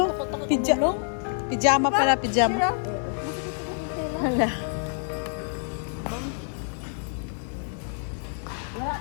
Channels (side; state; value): right; silent; 60 dB below the other